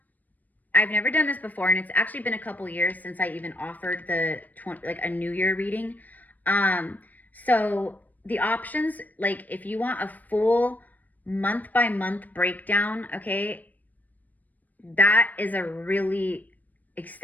I've never done this before, and it's actually been a couple years since I even offered a New Year reading. So the options, like if you want a full month by month breakdown, okay, that is a really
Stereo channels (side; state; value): right; late; 0.082 ms